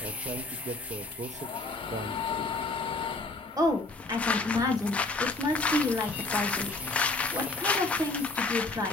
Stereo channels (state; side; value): quieter; right; 3.1 dB